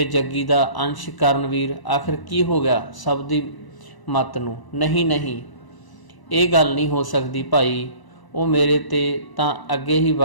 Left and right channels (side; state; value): right; late; 1.0 ms